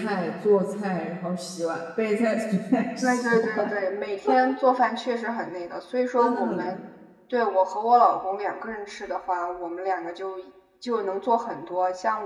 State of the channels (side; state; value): both; identical; correlation 1.00